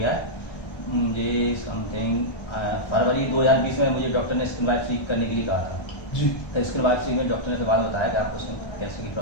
है मुझे। समथिंग फरवरी 2020 में मुझे डॉक्टर ने स्किन बायोप्सी करने के लिए कहा था जी। तो स्किन बायोप्सी में डॉक्टर ने फिर बाद में बताया कि आपको स्किन कैंसर की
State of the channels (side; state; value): right; late; 1.3 ms